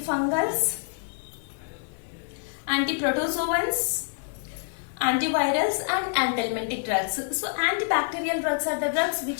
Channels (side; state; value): right; silent; digital silence